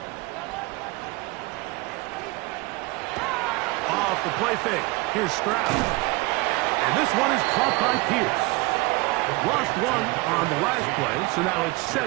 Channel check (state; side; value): quieter; left; 23.2 dB